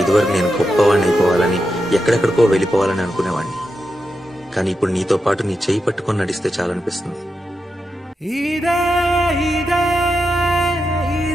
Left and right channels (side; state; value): both; normal; correlation 0.87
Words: ఇదివరకు నేను గొప్పవాడిని అయిపోవాలని, ఎక్కడెక్కడికో వెళ్ళిపోవాలని అనుకునేవాడిని. కానీ ఇప్పుడు నీతో పాటు నీ చేయి పట్టుకొని నడిస్తే చాలనిపిస్తుంది.